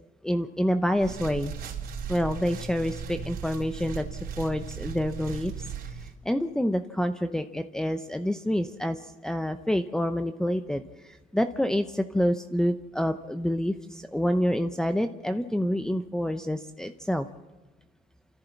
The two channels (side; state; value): both; normal; correlation 0.94